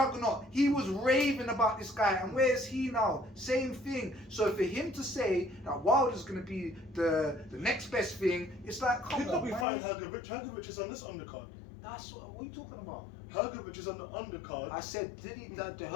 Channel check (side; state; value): right; drops out; at 9.7 s